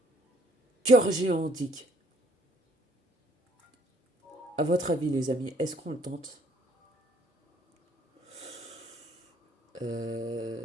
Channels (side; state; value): both; normal; correlation 0.63